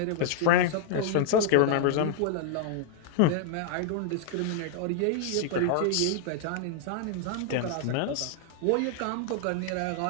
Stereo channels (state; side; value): different; both; correlation -0.01